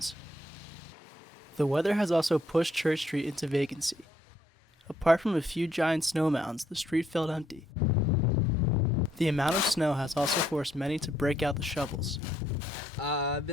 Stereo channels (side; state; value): both; normal; correlation 0.71